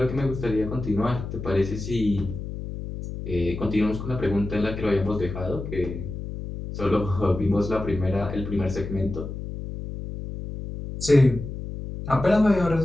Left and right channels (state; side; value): noise; left; hum, 8 dB below the sound